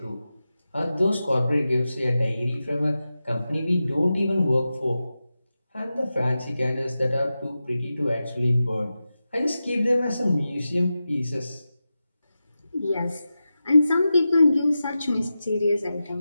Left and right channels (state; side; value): inverted; both; correlation -0.92